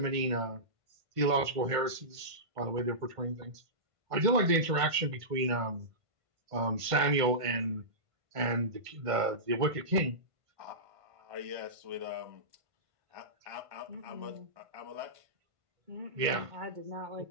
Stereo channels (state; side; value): late; left; 1.5 ms